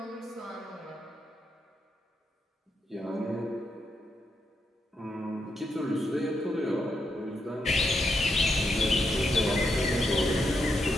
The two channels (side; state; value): both; normal; correlation 0.82